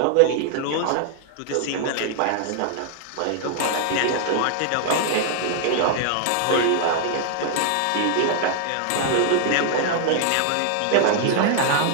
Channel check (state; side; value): different; both; correlation -0.01